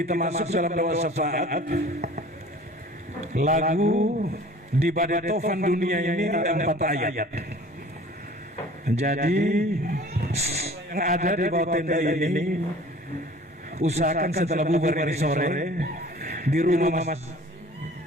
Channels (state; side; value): normal; both; correlation 0.47